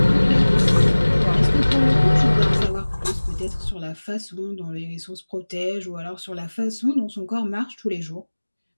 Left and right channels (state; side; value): inverted; both; correlation -1.00